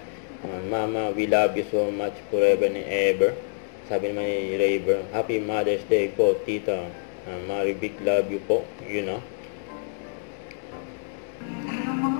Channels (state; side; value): silent; right; 61 dB below the other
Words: Mama, we love you so much forever and ever. Sabi naman ni Rayber, Happy Mother's Day po, tita. Mary big love you po, you know.